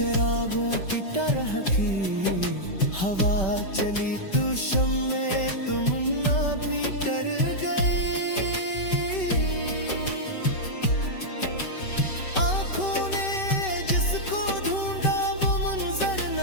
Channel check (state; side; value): late; right; 5.2 ms